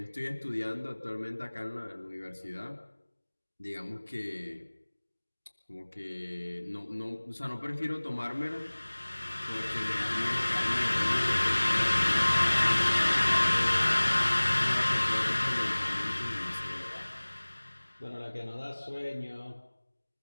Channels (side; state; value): both; inverted; correlation -1.00